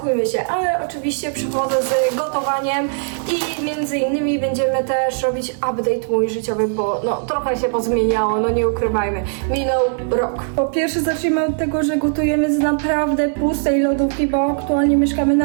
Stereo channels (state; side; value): silent; left; 61 dB below the other